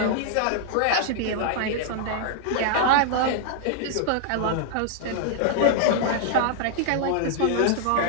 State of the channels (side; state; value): both; different; correlation 0.00